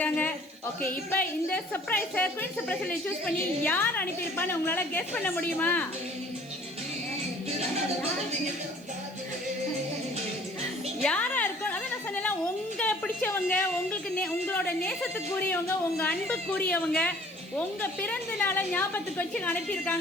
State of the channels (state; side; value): noise; right; hiss, 27 dB below the sound